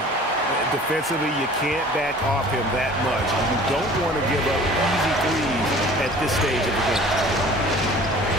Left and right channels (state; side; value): normal; both; correlation 0.47